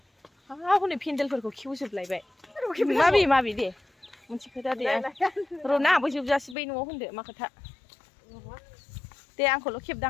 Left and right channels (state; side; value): drops out; right; at 6.6 s